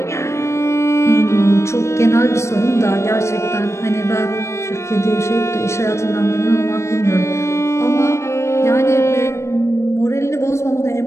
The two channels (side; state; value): right; late; 0.13 ms